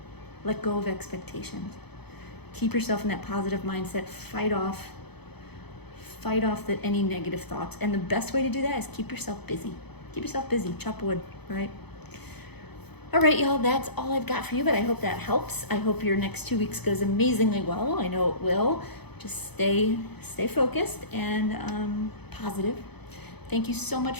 let go of expectations. Keep yourself in that positive mindset. Fight off any negative thoughts. And the best way to do that is keep yourself busy. Keep yourself busy. Chop wood, right? All right, y'all, that's all I've got for you, but I hope that helps. I hope your next 2 weeks goes amazingly well. I know it will. Just stay focused and positive. Thank you so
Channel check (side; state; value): right; late; 0.98 ms